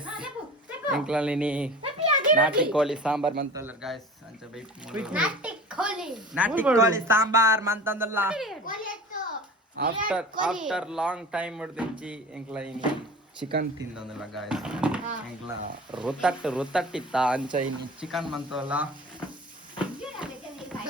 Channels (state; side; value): normal; both; correlation 0.39